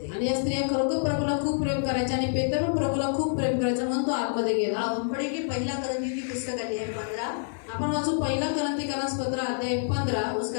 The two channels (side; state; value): right; silent; 55 dB below the other